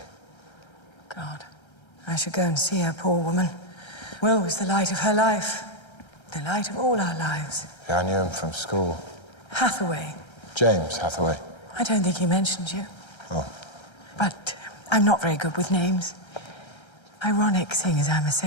God, I should go and see her, poor woman. Will was the light of her life. The light of all our lives. Yeah, I knew him from school. Hathaway. James Hathaway. I don't think he mentioned you. Oh. But I'm not very good with names. Ironic, seeing as I'm a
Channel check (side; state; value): right; late; 1.3 ms